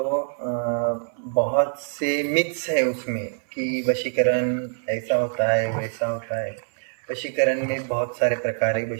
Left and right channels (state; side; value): silent; left; digital silence